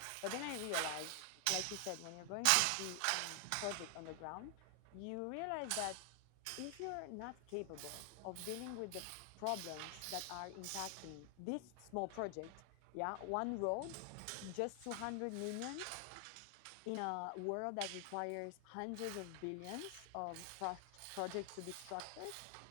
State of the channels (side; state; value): both; different; correlation 0.00